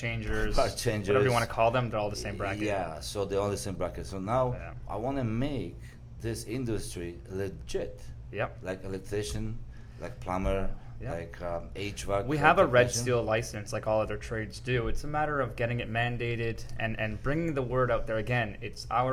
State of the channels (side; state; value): both; identical; correlation 1.00